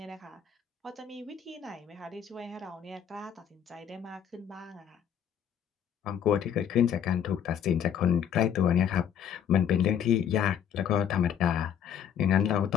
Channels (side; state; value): right; quieter; 8.8 dB